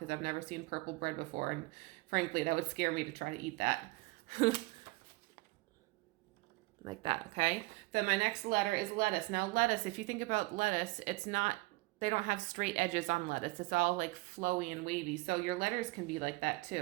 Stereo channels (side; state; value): left; quieter; 23.2 dB